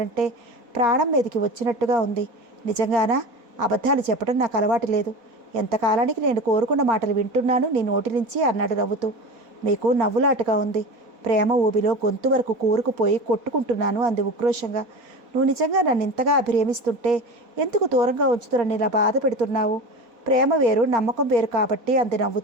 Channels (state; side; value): late; left; 4.2 ms